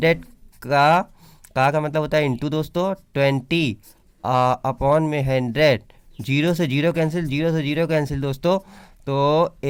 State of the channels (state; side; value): identical; both; correlation 1.00